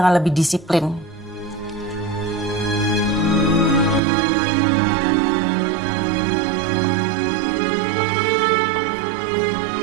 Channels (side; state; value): left; drops out; at 4.0 s